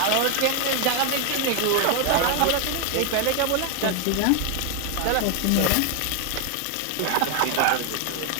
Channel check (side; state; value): both; different; correlation 0.01